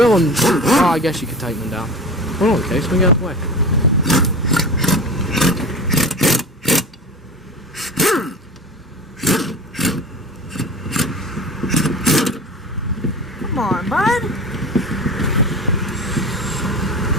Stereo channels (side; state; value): both; normal; correlation 0.33